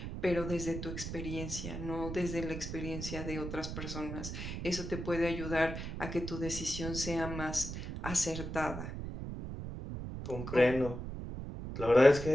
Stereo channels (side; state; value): right; noise; rumble, 6 dB below the sound